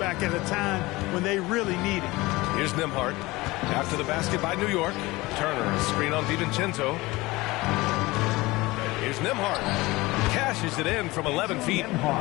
at a time when they really need it. Here's Nembhard. After the basket by New York. Turner, a screen on DiVincenzo. Here's Nembhard. Cashes it in from 11 feet.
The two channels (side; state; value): right; quieter; 21.0 dB